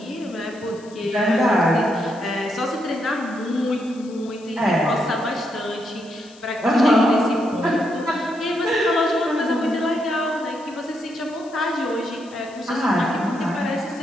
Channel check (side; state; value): left; noise; hiss, 25 dB below the sound